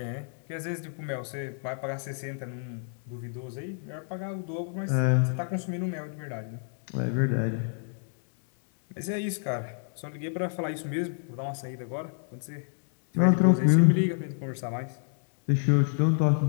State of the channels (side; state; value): right; silent; digital silence